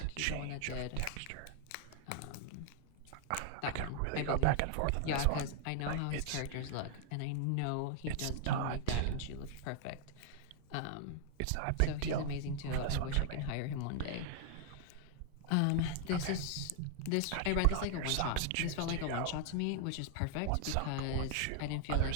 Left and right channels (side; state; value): both; different; correlation 0.00